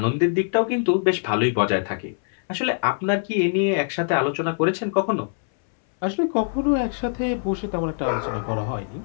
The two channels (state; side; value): silent; right; 61 dB below the other